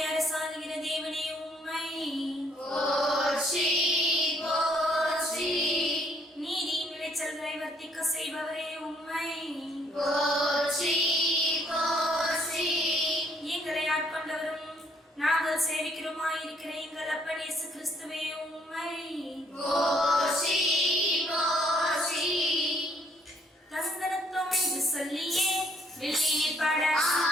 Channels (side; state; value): both; normal; correlation 0.66